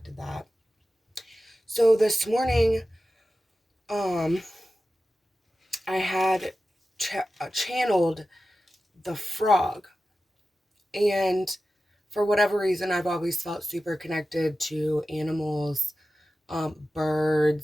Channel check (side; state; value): both; normal; correlation 0.94